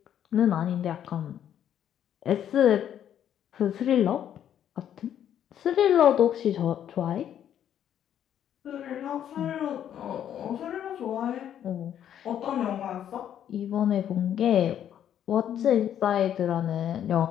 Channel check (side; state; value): right; quieter; 10.1 dB